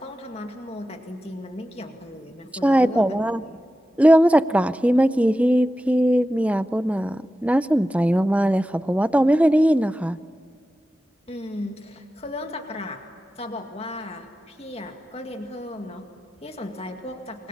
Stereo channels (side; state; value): both; normal; correlation 0.93